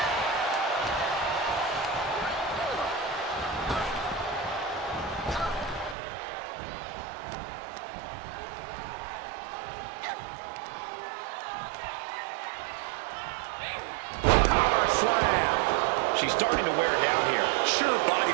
She's starting to wear down here. Sure,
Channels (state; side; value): drops out; left; at 6.0 s